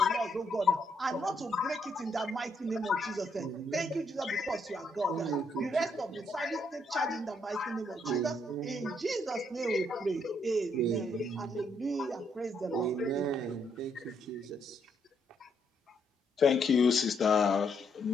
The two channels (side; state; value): both; normal; correlation 0.74